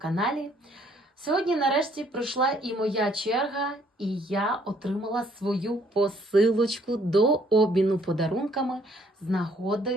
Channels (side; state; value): both; normal; correlation 0.64